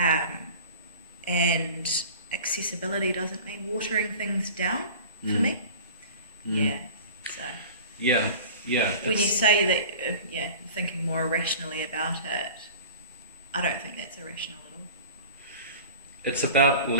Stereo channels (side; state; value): both; inverted; correlation -0.40